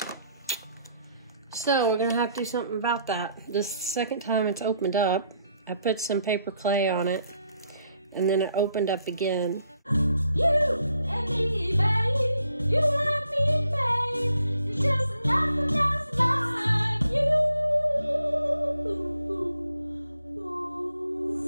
So we're gonna have to do something about that. This is the second time it's opened up. I put some paper clay on it and then it opened up again. You and me, babe. You and me, babe. It's just nothing else like you.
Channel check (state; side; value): inverted; both; correlation -0.71